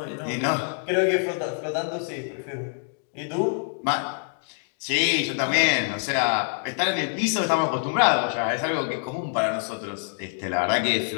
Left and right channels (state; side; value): silent; right; 61 dB below the other